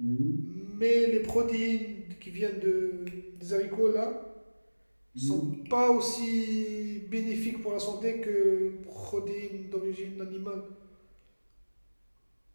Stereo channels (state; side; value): inverted; both; correlation -1.00